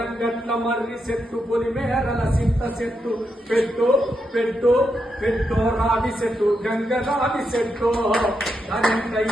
మర్రి చెట్టు పొలిమేరల సింత చెట్టు పెట్టు పెట్టు పెట్టు రావి చెట్టు గంగ రావి చెట్టు కరెంట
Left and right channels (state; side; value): normal; both; correlation 0.83